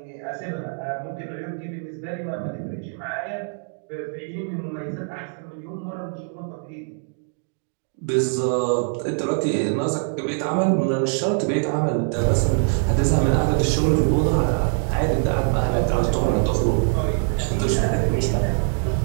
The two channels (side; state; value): left; silent; 63 dB below the other